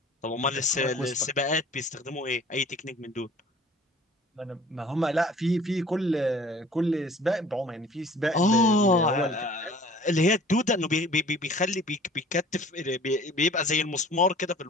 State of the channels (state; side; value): normal; both; correlation 0.49